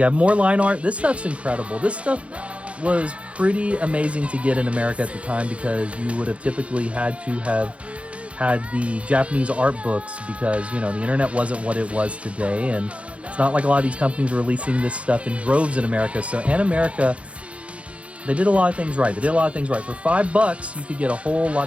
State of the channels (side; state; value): left; late; 0.062 ms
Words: have more line art. This stuff's incredible. This stuff was pretty amazing to get in America at the time because you would have typically had to have had the Japanese art books because, you know, the internet wasn't what it was today, and it's not like a lot of these companies were releasing this stuff in droves in America. So Animerica, they did a lot of things right. For $5, you could get a whole